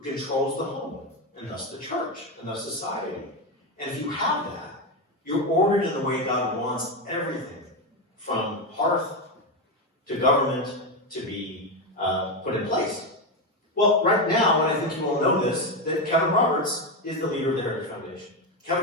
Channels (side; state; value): both; normal; correlation 0.11